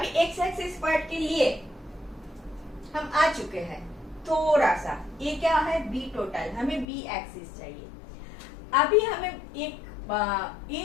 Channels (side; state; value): right; drops out; at 6.9 s